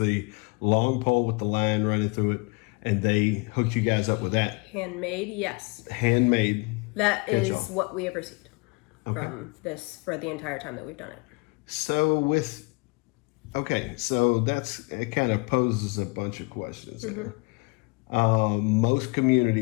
long pole with the line running through it, and they hooked you guys up with that. Handmade, yes. Handmade. That is what we have received. from this for the entire time that we've done it. So so it kind of poses a bunch of questions there. Most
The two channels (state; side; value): quieter; right; 28.9 dB